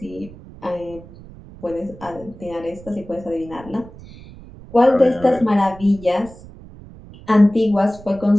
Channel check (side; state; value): right; noise; rumble, 19 dB below the sound